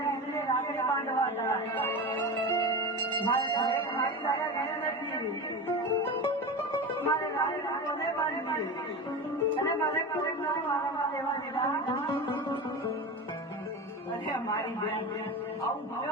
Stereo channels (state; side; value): normal; both; correlation 0.26